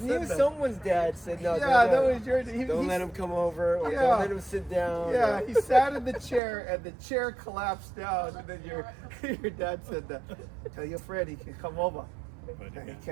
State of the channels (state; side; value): drops out; left; at 6.4 s